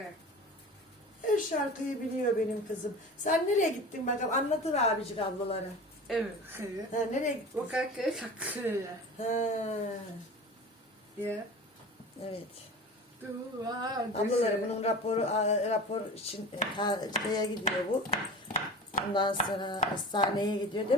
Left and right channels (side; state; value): both; normal; correlation 0.35